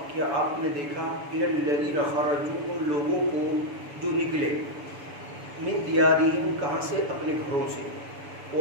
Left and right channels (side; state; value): left; late; 7.0 ms